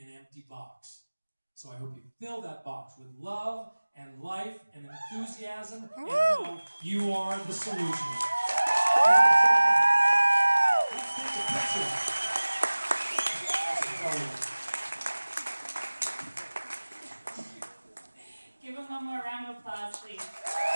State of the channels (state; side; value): inverted; both; correlation -1.00